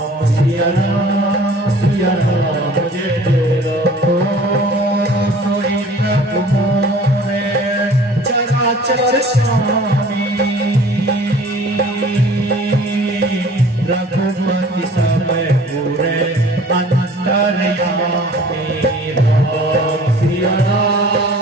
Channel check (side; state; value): both; normal; correlation 0.49